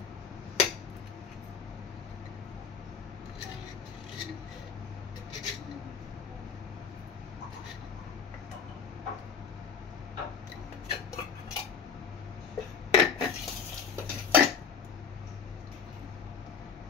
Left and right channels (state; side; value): quieter; right; 6.4 dB